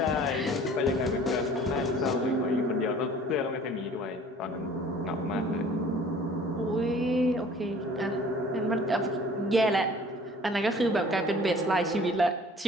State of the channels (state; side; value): normal; both; correlation 0.50